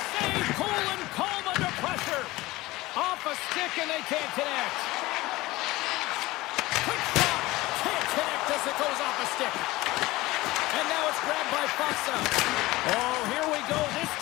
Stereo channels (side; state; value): right; quieter; 19.3 dB